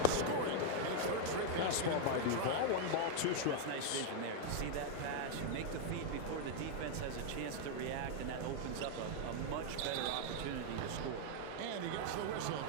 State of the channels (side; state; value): both; different; correlation 0.00